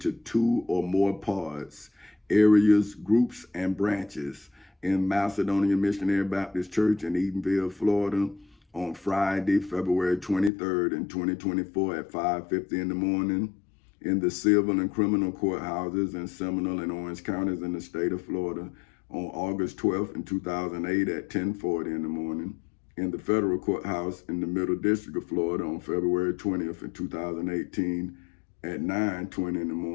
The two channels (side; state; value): right; drops out; at 10.5 s